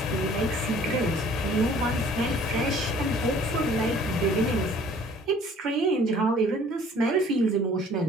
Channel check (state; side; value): normal; both; correlation 0.54